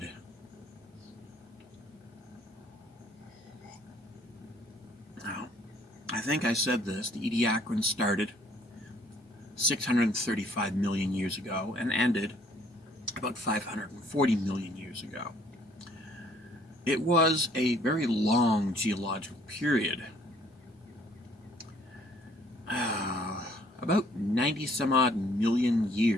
Now, I think I said this, the Ediacaran started 635 million years ago and ended about 540 million years ago. It was a very long geological period, about 90 some odd million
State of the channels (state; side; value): normal; both; correlation 0.61